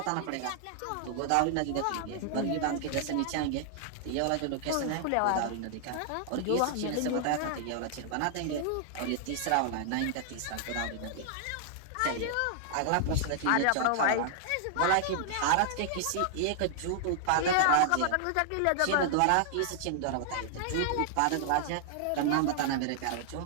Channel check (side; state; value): both; different; correlation -0.01